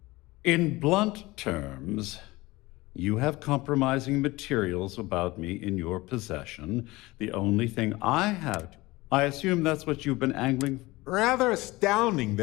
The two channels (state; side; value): quieter; right; 20.8 dB